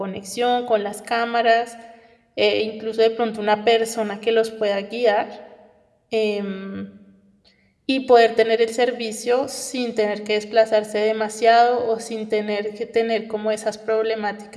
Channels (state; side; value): identical; both; correlation 1.00